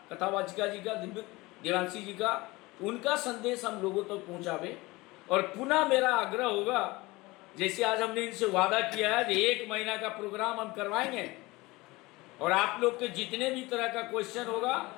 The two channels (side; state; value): right; quieter; 21.7 dB